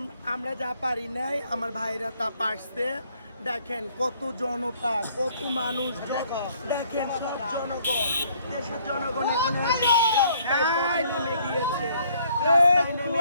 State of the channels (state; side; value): inverted; both; correlation -0.63